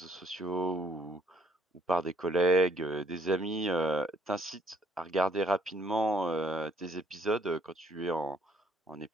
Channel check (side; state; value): both; normal; correlation 0.65